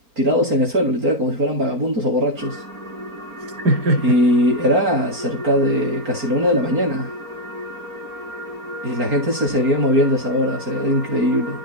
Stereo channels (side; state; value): left; late; 4.3 ms